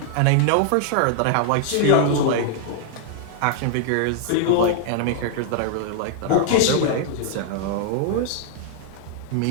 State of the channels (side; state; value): both; different; correlation -0.01